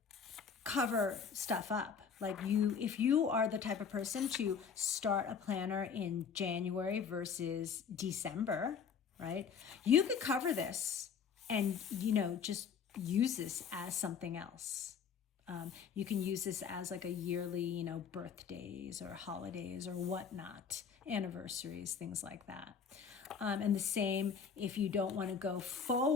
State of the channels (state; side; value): quieter; right; 6.5 dB